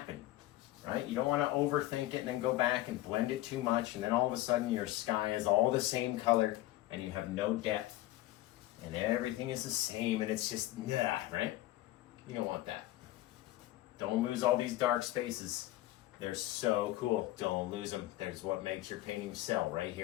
right? You don't want to overthink it and then go back and blend it too much, and then all of a sudden your sky is all the same color and you have no depth and everything is the same and it's just, nah, right? You don't want that. Don't lose all these dark spaces. They're so cool. Don't lose them. There's what makes your painting sell right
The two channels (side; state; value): right; quieter; 16.1 dB